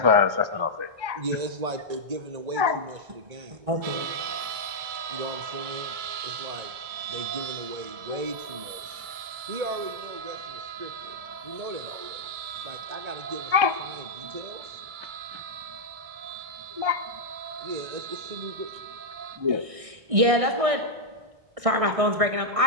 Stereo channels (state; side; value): late; left; 2.2 ms